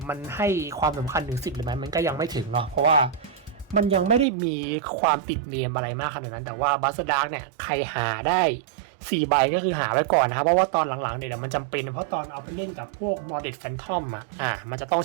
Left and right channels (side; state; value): left; drops out; at 4.2 s